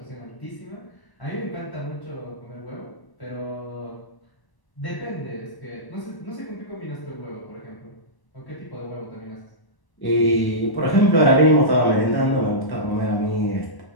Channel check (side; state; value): right; late; 1.1 ms